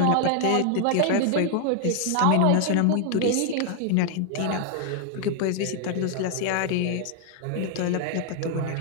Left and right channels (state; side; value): different; both; correlation 0.00